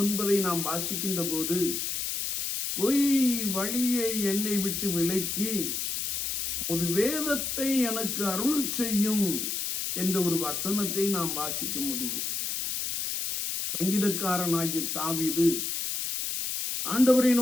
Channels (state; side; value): noise; left; hiss, 2 dB below the sound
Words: நாம் வாசிக்கின்ற போது, பொய் வழியை என்னை விட்டு விலக்கி ஒரு வேதத்தை எனக்கு அருள் செய்யும் என்ற ஒரு வசனத்தை நாம் வாசிக்க முடியும். சங்கீதக்காரனாகிய தாவீது ஆண்டவரை